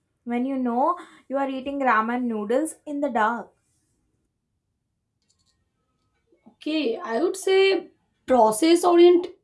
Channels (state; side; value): identical; both; correlation 1.00